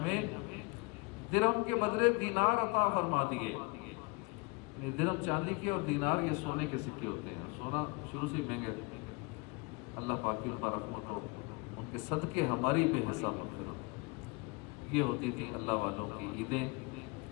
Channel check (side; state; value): right; quieter; 28.5 dB